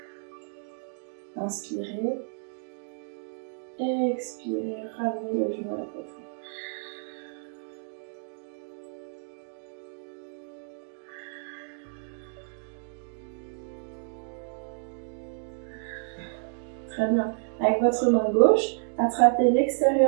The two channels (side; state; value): left; silent; digital silence